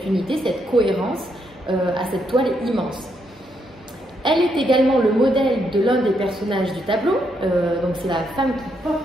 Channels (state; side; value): normal; both; correlation 0.77